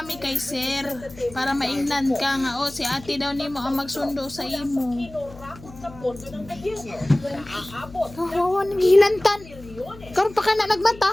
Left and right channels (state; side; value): noise; left; hum, 18 dB below the sound